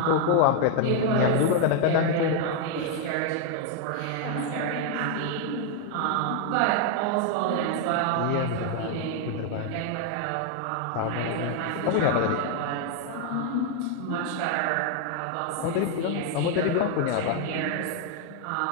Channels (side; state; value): both; different; correlation 0.00